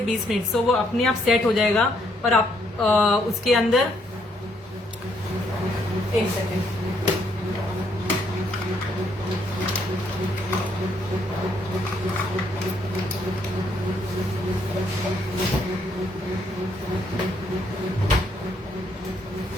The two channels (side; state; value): both; normal; correlation 0.71